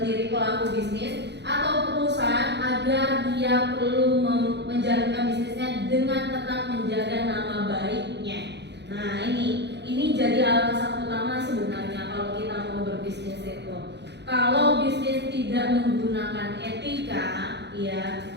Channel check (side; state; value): left; late; 0.50 ms